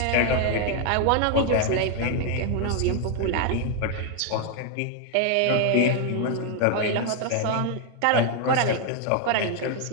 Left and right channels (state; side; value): different; both; correlation 0.00